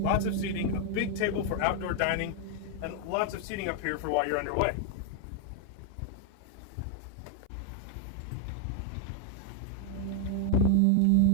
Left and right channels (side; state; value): both; different; correlation 0.00